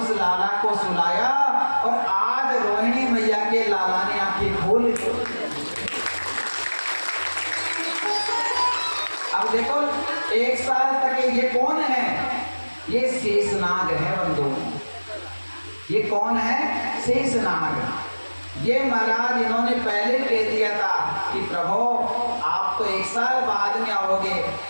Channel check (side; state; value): both; inverted; correlation -1.00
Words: उस लाला को सुलाया और आज रोहिणी मैया के लाला ने आंखें खोल ली। अब देखो 1 साल तक ये कौन है? ये शेषनाग है बंधु। ये कौन है? शेषनाग। ये महाराज इन्होंने पहले कह दिया था कि प्रभु आप तो 1 साल बाद में आओगे,